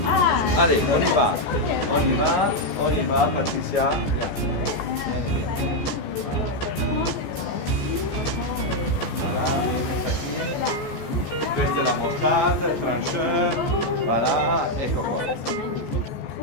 Allez, on y va. On y va, Patricia. Questa è la mostarda, il trancheur, voilà, ecco qua.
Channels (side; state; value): right; late; 14 ms